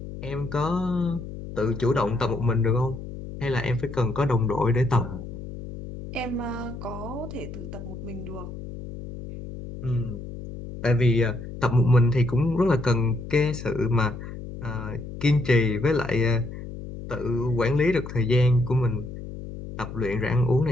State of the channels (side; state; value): left; noise; hum, 10 dB below the sound